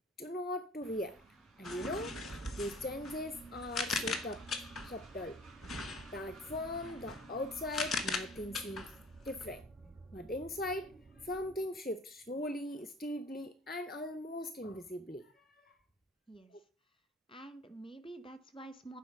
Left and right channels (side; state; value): both; normal; correlation 0.49